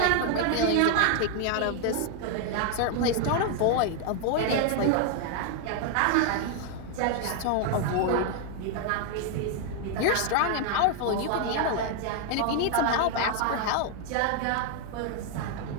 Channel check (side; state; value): both; different; correlation 0.00